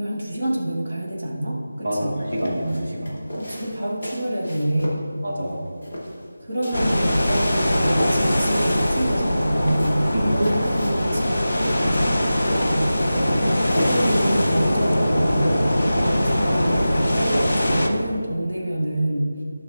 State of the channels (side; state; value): both; inverted; correlation -0.95